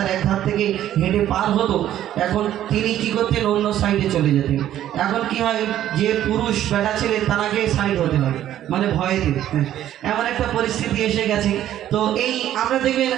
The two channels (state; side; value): quieter; left; 12.0 dB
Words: এক ধার থেকে হেঁটে পার হতো, এখন তিনি কি করতেন, অন্য সাইডে চলে যেতেন। এখন কি হয়, যে পুরুষ বেটা ছেলে তাকে সাইড হতে হয়, মানে ভয়েতে। এমন একটা পরিস্থিতি এসে গেছে। তো এই আমরা দেখবেন